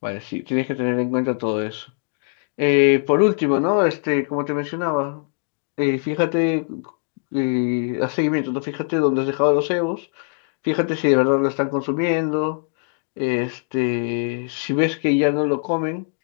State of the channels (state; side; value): silent; right; digital silence